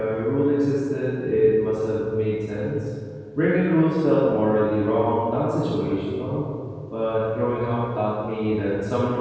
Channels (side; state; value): both; identical; correlation 1.00